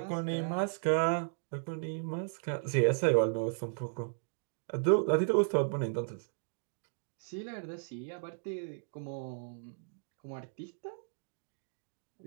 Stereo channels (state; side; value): silent; left; digital silence